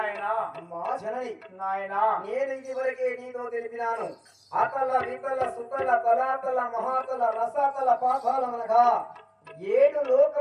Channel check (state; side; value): identical; both; correlation 1.00